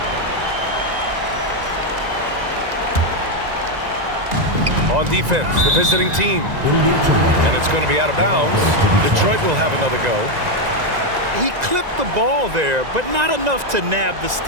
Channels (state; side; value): late; left; 1.9 ms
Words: On defense, the visiting team. And it's going to be out of bounds. Detroit will have another go. He clipped the ball there, but not enough to nab the